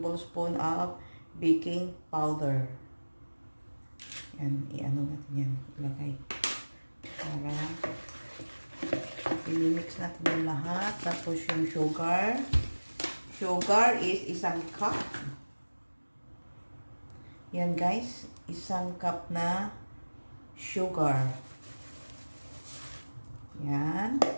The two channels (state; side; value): inverted; both; correlation -1.00